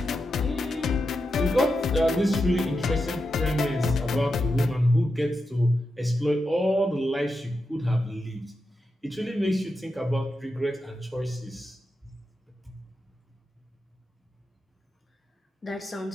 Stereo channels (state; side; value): normal; both; correlation 0.88